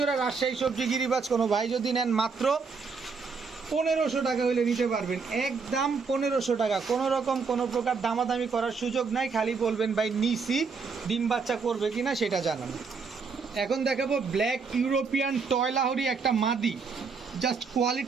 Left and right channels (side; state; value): left; quieter; 5.1 dB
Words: রাজশাহী সবজি গিরিবাজ কোনো ভাই যদি নেন মাত্র 1500 টাকা হইলে নিতে পারবেন, একদম 1500 টাকা। কোনো রকম কোনো প্রকার দামাদামি করার সুযোগ নাই, খালি বলবেন ভাই নিসি, ডিম বাচ্চা করবে কিনা সেটা জানান। এখন দেখাবো ব্ল্যাক ইউরোপিয়ান টয়লাহরি একটা মাদি, জাস্ট